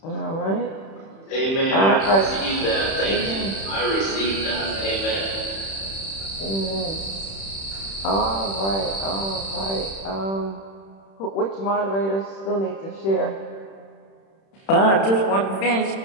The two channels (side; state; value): right; late; 31 ms